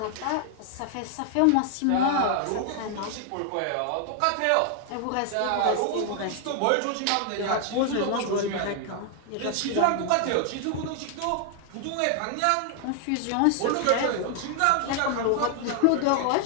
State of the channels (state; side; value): different; both; correlation 0.00